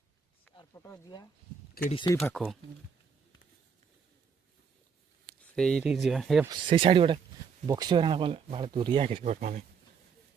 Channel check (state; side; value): quieter; left; 6.2 dB